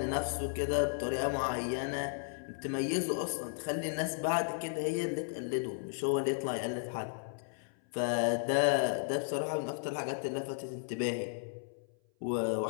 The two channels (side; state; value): right; silent; 55 dB below the other